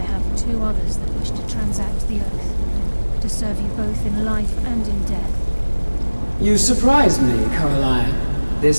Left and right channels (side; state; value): both; inverted; correlation -1.00